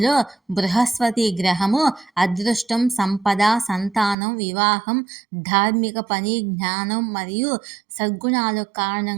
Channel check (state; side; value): drops out; left; at 4.2 s